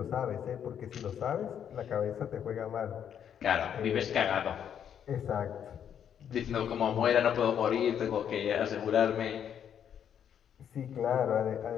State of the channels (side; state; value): right; quieter; 8.8 dB